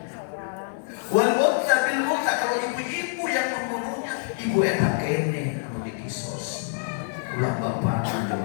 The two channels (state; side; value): silent; right; digital silence